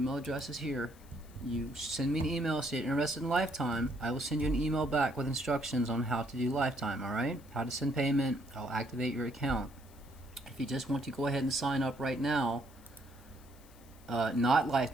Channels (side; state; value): left; noise; hiss, 26 dB below the sound